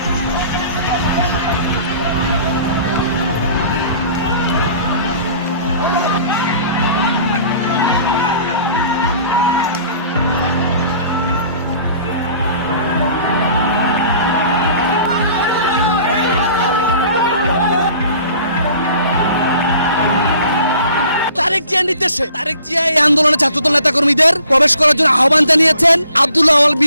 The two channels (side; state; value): both; inverted; correlation -0.51